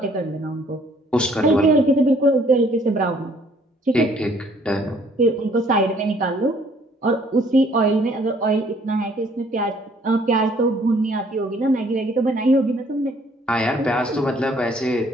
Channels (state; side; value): normal; both; correlation 0.61